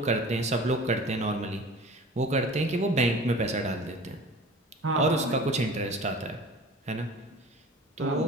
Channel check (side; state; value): both; normal; correlation 0.41